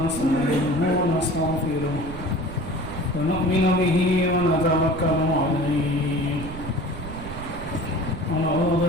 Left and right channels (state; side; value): noise; right; rumble, 10 dB below the sound